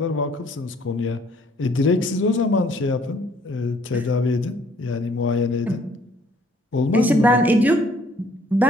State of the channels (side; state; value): both; normal; correlation 0.61